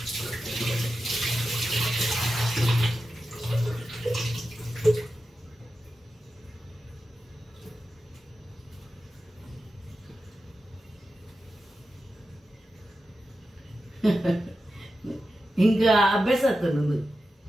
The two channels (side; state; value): both; normal; correlation 0.91